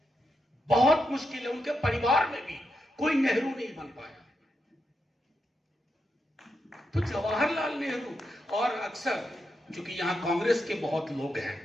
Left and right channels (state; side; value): normal; both; correlation 0.84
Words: बहुत मुश्किल है। उनके परिवार में भी कोई नेहरू नहीं बन पाया। तो जवाहरलाल नेहरू, और अक्सर क्योंकि यहां कांग्रेस के बहुत लोग हैं,